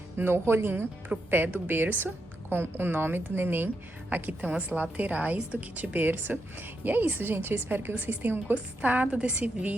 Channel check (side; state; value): both; normal; correlation 0.83